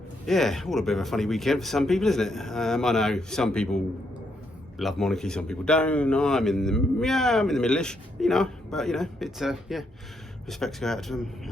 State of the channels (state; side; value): normal; both; correlation 0.77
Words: Yeah, all a bit of a funny weekend for some people, isn't it? I know some people love monarchy, some people don't. I'm in the middle-ish, but it's yeah, respects go out to